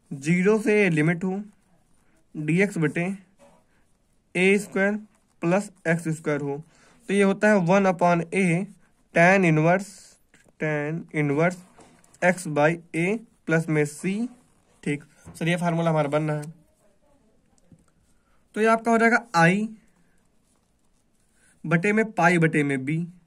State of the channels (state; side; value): identical; both; correlation 1.00